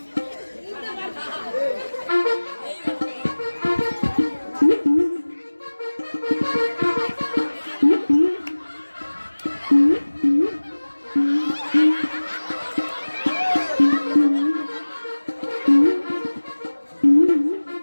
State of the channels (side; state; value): both; inverted; correlation -1.00